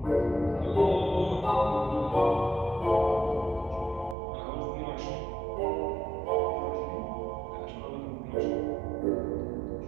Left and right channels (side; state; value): left; drops out; at 4.2 s